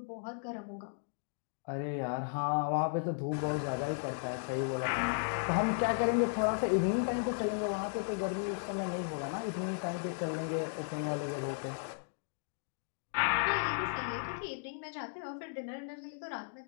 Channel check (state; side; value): silent; right; digital silence